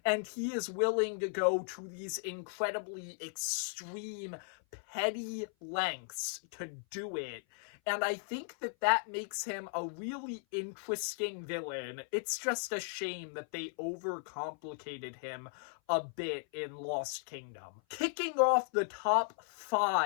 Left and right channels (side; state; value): right; silent; 54 dB below the other